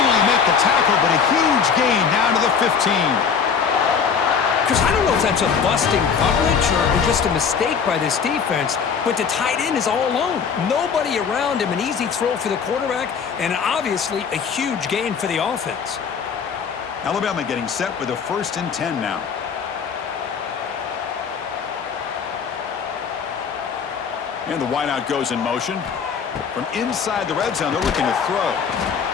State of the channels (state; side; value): quieter; right; 6.5 dB